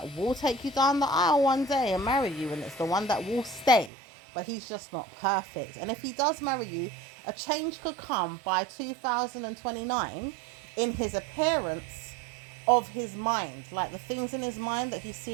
will take you down the aisle one day and marry you, and it's the one that will stay, but he's just not perfect. And if he does marry you, a change could come by 2029 in his appearance of his mind, like the things in his mind that he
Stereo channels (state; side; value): drops out; left; at 3.9 s